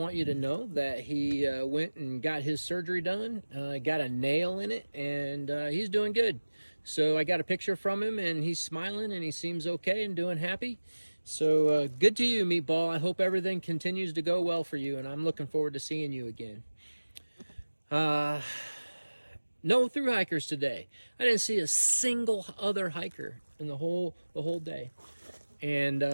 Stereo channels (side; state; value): both; inverted; correlation -1.00